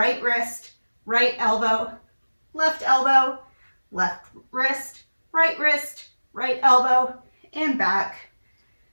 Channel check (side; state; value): both; inverted; correlation -1.00